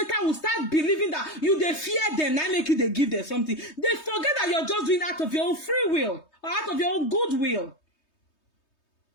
will start believing that you they fear them, now make you they give them something. They forget that you're just doing out of your own free will or out of your own goodwill.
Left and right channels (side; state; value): right; late; 3.2 ms